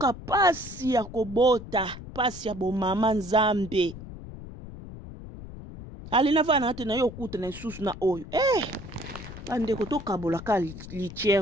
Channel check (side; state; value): left; noise; rumble, 13 dB below the sound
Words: pasi ya kobota pasi ya bomama nzambe alina vana te na yo kuta na susu na oyo bandeko tokabolaka